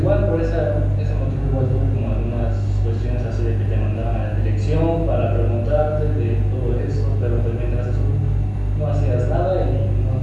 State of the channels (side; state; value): both; identical; correlation 1.00